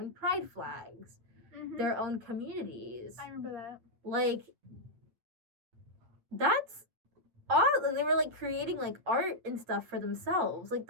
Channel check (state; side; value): late; left; 8.7 ms